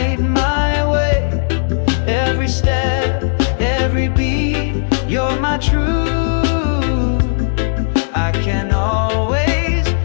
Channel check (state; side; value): silent; right; digital silence